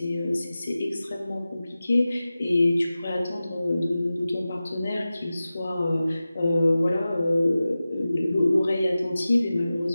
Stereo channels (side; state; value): both; inverted; correlation -0.95